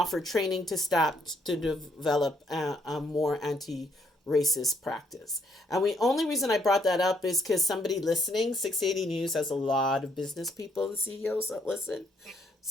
training to staff to develop a more racist practice. And the only reason I brought that up is because somebody listening, 680 News has a lot of business people and CEOs that listen.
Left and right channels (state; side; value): normal; both; correlation 0.71